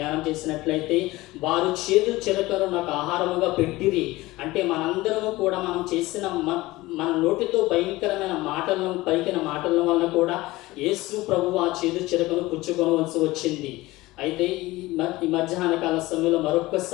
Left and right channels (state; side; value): quieter; right; 19.3 dB